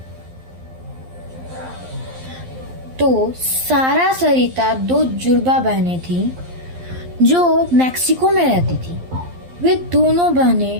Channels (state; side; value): late; left; 11 ms